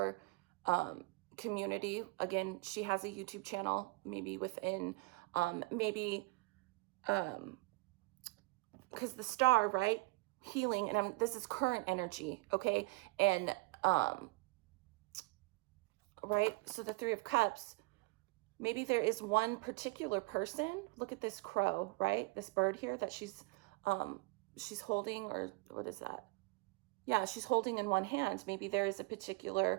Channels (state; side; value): quieter; left; 24.3 dB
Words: community. Again, she has a YouTube channel, maybe within, because the star, right? Healing, and this is current energy, okay? And, right? So the 3 of Cups, maybe there is one particular person. Look at this crow, right? This bird here that she's holding, or what is that? Yeah, she's holding in one hand. Maybe there is a